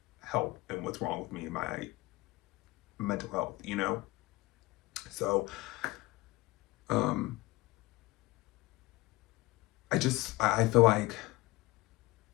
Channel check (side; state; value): right; quieter; 20.5 dB